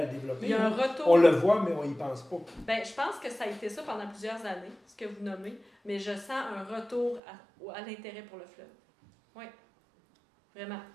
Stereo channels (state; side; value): drops out; left; at 7.2 s